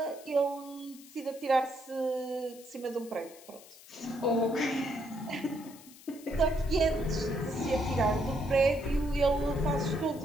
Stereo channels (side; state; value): left; noise; hiss, 20 dB below the sound